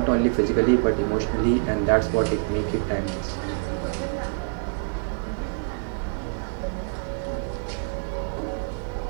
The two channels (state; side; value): silent; left; 61 dB below the other